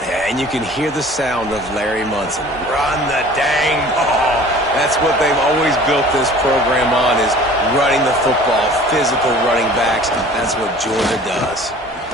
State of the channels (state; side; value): normal; both; correlation 0.47